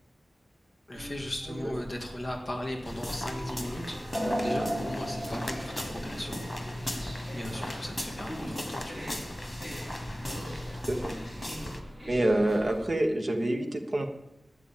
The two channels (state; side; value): normal; both; correlation 0.97